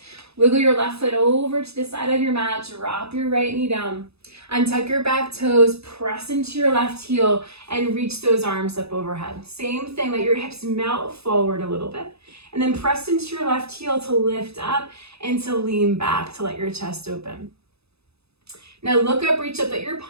Wiggle your left foot over to the side of your mat. Drop your right knee down. Untuck your back toes. Press into your left heel and reach those arms up overhead. Same thing, let your hips melt forward a little bit. And then press into your left heel to lift up and to lean back to let your chest open. Now look up, reach up, let your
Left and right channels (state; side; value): late; left; 0.79 ms